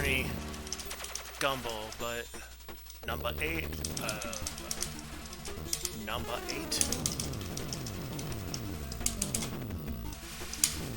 Gumble, but number 8. Number 8.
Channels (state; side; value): identical; both; correlation 1.00